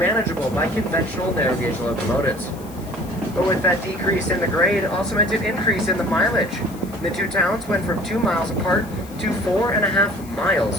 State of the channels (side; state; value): left; noise; hiss, 21 dB below the sound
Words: by conventional narrow gauge locomotives. But with that decrease in the grade, also meant an increase in the mileage. The two towns went from 2 miles apart to 4.5 miles